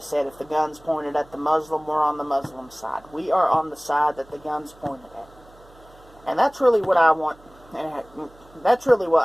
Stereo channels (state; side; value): noise; right; hum, 26 dB below the sound